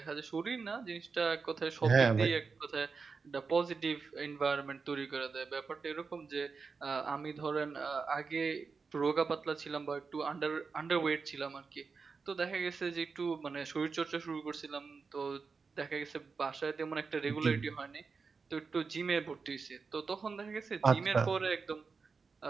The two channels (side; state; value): left; quieter; 4.9 dB